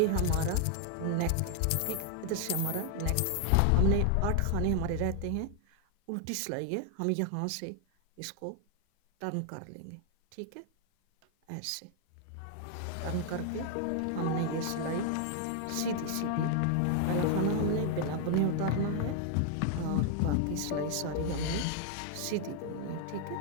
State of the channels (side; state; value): both; different; correlation 0.00